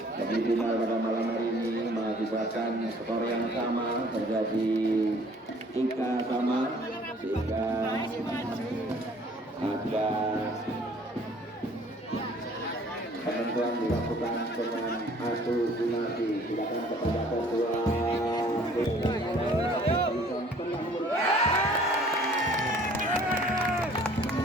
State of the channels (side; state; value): both; normal; correlation 0.55